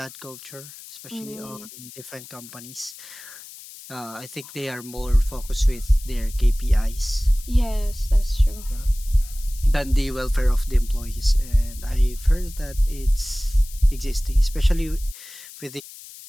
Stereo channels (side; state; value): left; noise; hiss, 17 dB below the sound